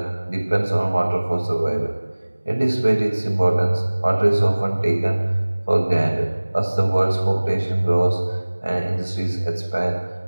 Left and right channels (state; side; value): inverted; both; correlation -1.00